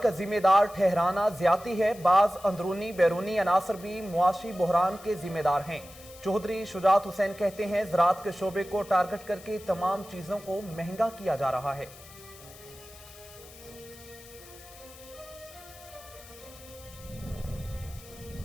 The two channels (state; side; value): noise; left; hiss, 19 dB below the sound